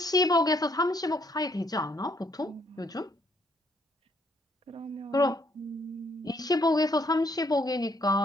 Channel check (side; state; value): both; normal; correlation 0.69